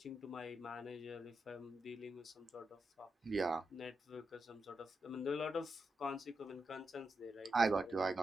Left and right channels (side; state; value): both; normal; correlation 0.86